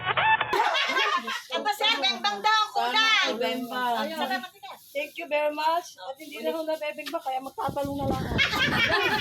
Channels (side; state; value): both; identical; correlation 1.00